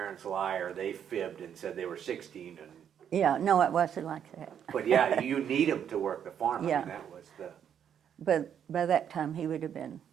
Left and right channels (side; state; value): left; quieter; 8.7 dB